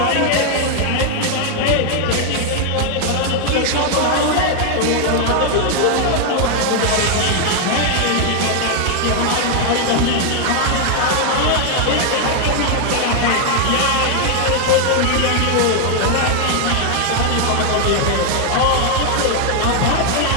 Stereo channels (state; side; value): different; both; correlation 0.00